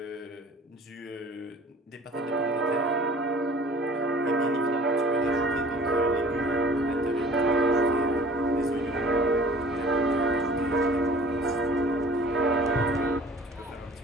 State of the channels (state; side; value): normal; both; correlation 0.48